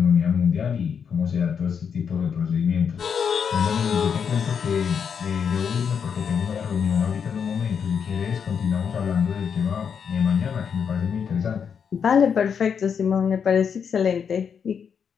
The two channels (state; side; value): quieter; right; 7.0 dB